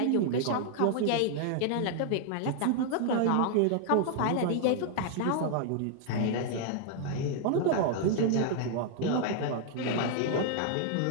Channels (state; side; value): different; both; correlation 0.00